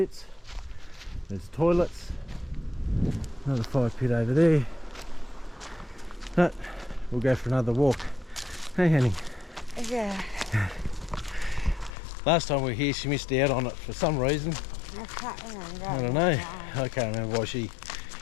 there's toilets, another fire pit over there, but we'll go for another walk. Hey honey. Yeah. Last time we were here she missed out on it for some reason. I can't remember. I don't know. I can't remember why she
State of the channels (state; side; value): drops out; right; at 11.9 s